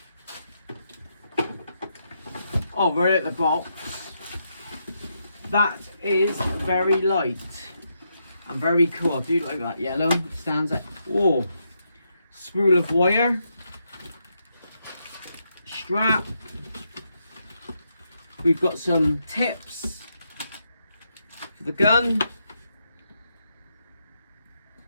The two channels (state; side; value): inverted; both; correlation -0.81